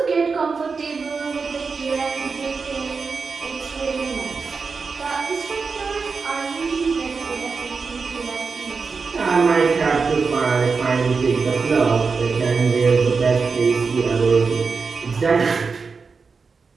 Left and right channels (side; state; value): left; quieter; 4.9 dB